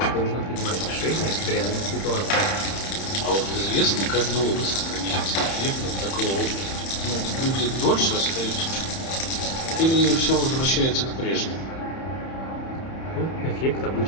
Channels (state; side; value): late; right; 31 ms